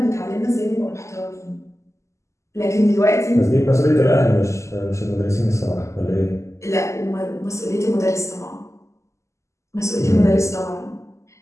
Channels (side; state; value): right; late; 0.14 ms